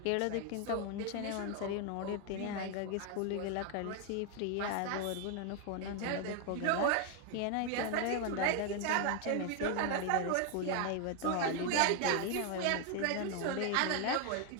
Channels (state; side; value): different; both; correlation 0.01